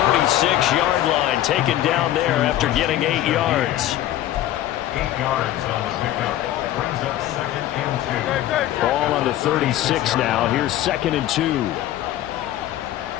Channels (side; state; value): right; quieter; 13.4 dB